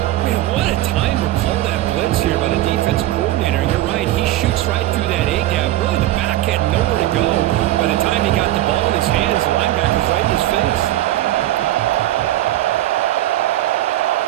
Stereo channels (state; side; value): quieter; left; 15.0 dB